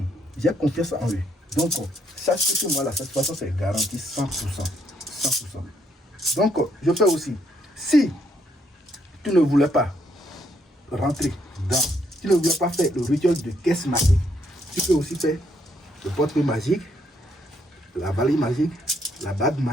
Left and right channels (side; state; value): both; normal; correlation 0.72